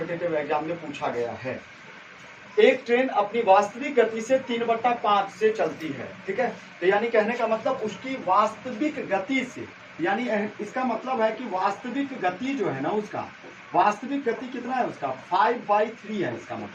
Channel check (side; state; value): both; identical; correlation 1.00